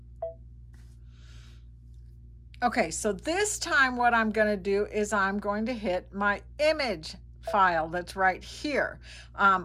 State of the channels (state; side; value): identical; both; correlation 1.00